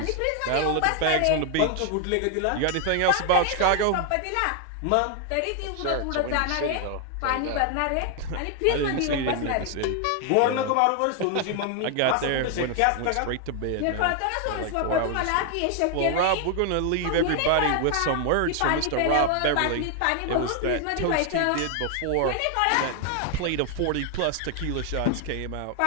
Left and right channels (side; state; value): both; different; correlation 0.00